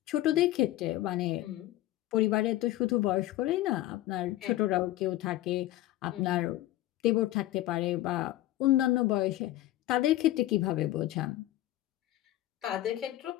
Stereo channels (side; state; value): right; quieter; 15.4 dB